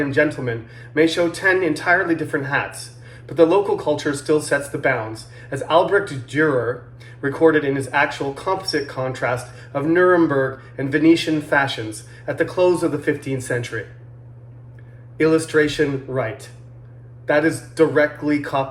gentlemen may show 10 entirely different hats, but the local culture still sets the bounds, as Albrecht Dürer recorded in his actual composite contrast of Nuremberg and Venetian fashions at the close of the 15th century. Illustration right. That is directly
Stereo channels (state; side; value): identical; both; correlation 1.00